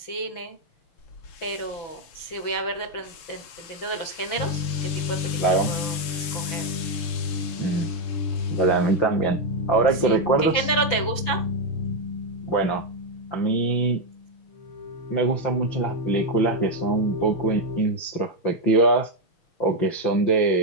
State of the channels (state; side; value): late; right; 6.0 ms